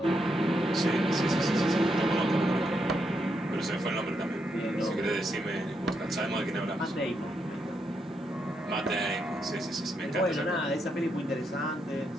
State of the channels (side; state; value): both; normal; correlation 0.80